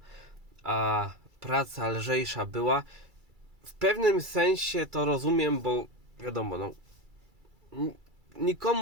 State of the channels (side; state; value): left; late; 2.3 ms